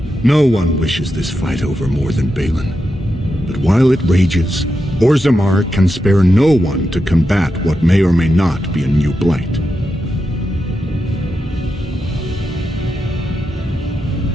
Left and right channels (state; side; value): normal; both; correlation 0.87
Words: No one wishes this fight over more than Balin. But while it rages, Orzammar can spare no one to combat what may or may not be a new blight.